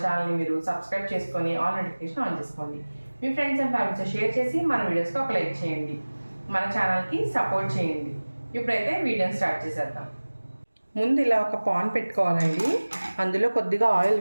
ఛానల్ని మీరు సబ్స్క్రైబ్ చేసుకొని ఆల్ నోటిఫికేషన్ ఆన్ చేసుకోండి. మీ ఫ్రెండ్స్ అండ్ ఫ్యామిలీతో షేర్ చేసి మన వీడియోస్కి ఒక లైక్ చేయండి, మన ఛానల్కి సపోర్ట్ చేయండి. ఇప్పుడైతే వీడియోని స్టార్ట్ చేసేద్దాం. ముందు ఇలా ఒక పాన్ పెట్టుకోవాలండి. అందులో కొద్దిగా ఆయిల్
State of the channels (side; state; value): both; inverted; correlation -1.00